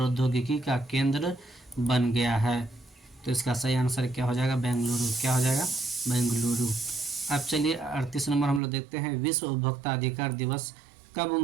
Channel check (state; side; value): drops out; left; at 8.6 s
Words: का केंद्र बन गया है। तो इसका सही आंसर क्या हो जाएगा? बेंगलुरु। क्या हो जाएगा? बेंगलुरु। अब चलिए 38 नंबर हम लोग देखते हैं, विश्व उपभोक्ता अधिकार दिवस कब